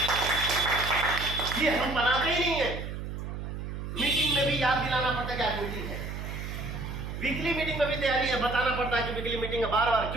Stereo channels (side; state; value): right; noise; hum, 6 dB below the sound